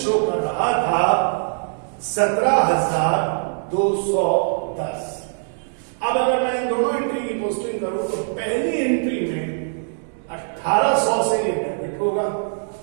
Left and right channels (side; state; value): left; silent; digital silence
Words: कर रहा था 17,210। अब अगर मैं इन दोनों एंट्री की पोस्टिंग करूं तो पहली एंट्री में 1800 से ये डेबिट होगा